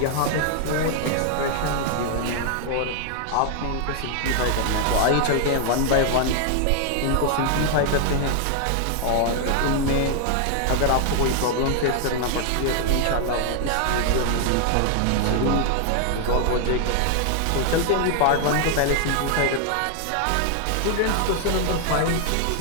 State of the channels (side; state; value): both; different; correlation 0.00